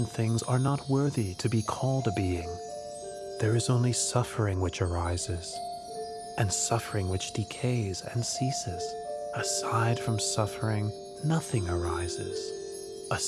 things are not worthy to be called a being. There is only suffering which arises, and suffering which decays and ceases. Aside from suffering, nothing arises.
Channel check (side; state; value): both; identical; correlation 1.00